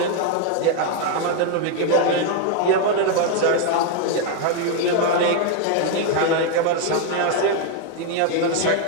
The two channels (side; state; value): both; different; correlation 0.01